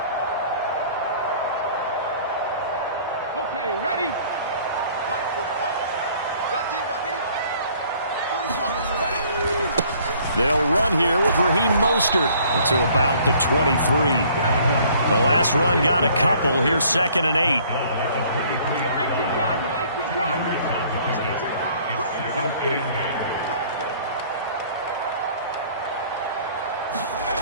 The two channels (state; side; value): inverted; both; correlation -0.56